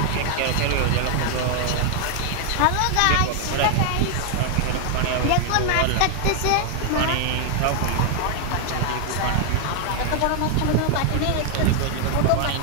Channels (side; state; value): both; different; correlation 0.00